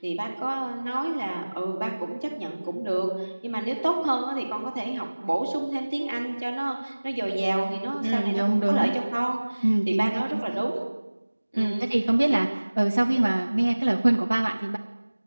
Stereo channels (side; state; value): both; inverted; correlation -1.00